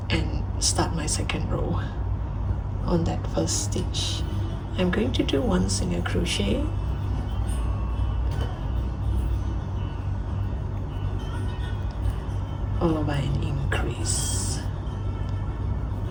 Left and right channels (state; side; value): identical; both; correlation 1.00